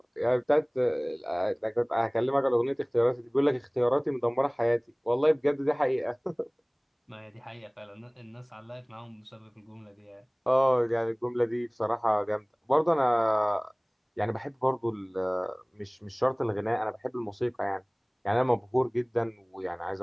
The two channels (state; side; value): identical; both; correlation 1.00